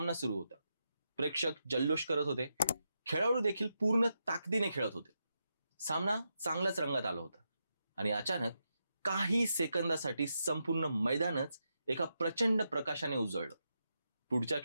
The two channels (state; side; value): inverted; both; correlation -0.85